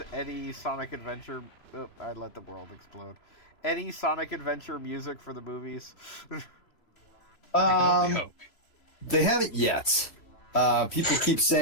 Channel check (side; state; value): right; late; 3.0 ms